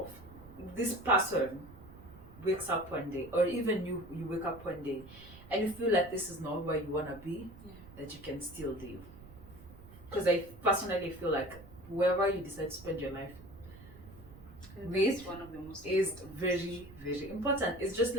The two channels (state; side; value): noise; right; rumble, 18 dB below the sound